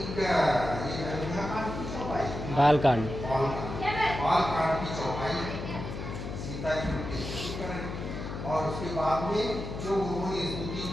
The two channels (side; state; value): left; noise; hum, 7 dB below the sound